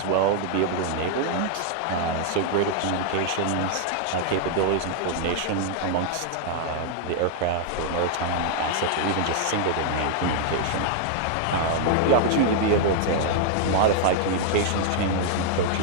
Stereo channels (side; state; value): both; different; correlation 0.00